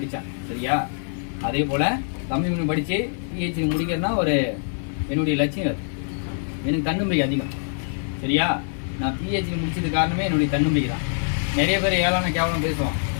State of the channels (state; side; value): silent; right; digital silence